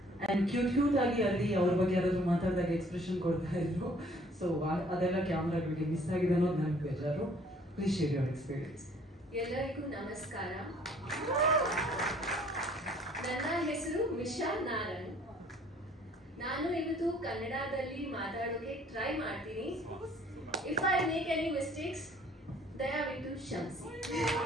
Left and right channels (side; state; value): both; normal; correlation 0.58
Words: and cute ಆಗಿ ಅಲ್ಲಿ ಅವ್ರ ಬಗ್ಗೆ ಯಾರಾದ್ರೂ ಮಾತಾಡಿದಾಗ ಎಕ್ಸ್ಪ್ರೆಷನ್ ಕೊಡ್ತಾ ಇದ್ರು. ಸೊ ಅದೆಲ್ಲ ಕ್ಯಾಮ್ರಾಗಳಿಗೆ ಮಿಸ್ ಆಗಿದೆ ಅನ್ನೋದು ನನಗೆ ಬೇಜಾರು. Please share your experience. ಎಲ್ಲರಿಗೂ ನಮಸ್ಕಾರ. ನನ್ನ ಹೆಸರು ಮಿಶಾ ನಾರನ್. ನಾನು ಇವತ್ತು ಕನ್ನಡದಲ್ಲಿ ಮಾತಾಡೋಕೆ ಟ್ರೈ ಮಾಡ್ತೀನಿ. If I make any mistakes ದಯವಿಟ್ಟು ಕ್ಷಮಿಸಿ.